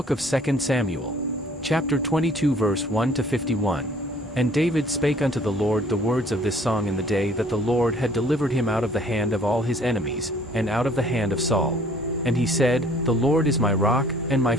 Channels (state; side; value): normal; both; correlation 0.56